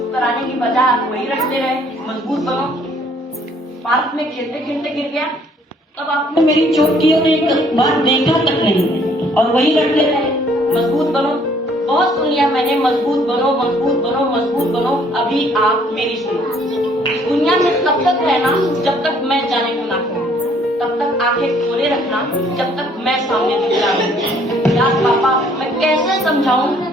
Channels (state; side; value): normal; both; correlation 0.62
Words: कराने की बजाय आप वही रटते रहे, मजबूत बनो। पार्क में खेलते खेलते गिर गया, तब आपने मेरी चोट की और एक बार देखा तक नहीं और वही रटते रहे, मजबूत बनो। बहुत सुन लिया मैंने, मजबूत बनो, मजबूत बनो, मजबूत बनो। अभी आप मेरी सुनो। दुनिया में तब तक रहना जब तक मैं जाने को ना कहूं, तब तक आंखें खोले रखना जब तक मैं सामने दिख रहा हूं। यार पापा मैं कैसे समझाऊं